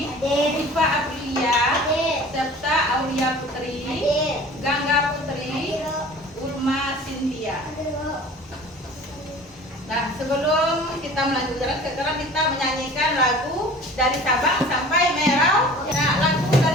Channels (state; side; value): normal; both; correlation 0.44